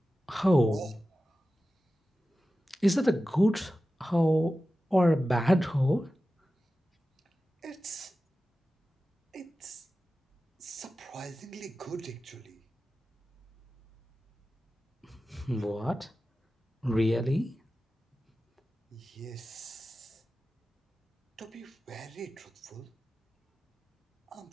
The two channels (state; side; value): normal; both; correlation 0.94